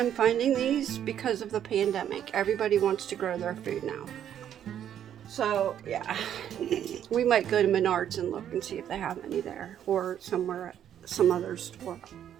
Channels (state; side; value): quieter; left; 10.0 dB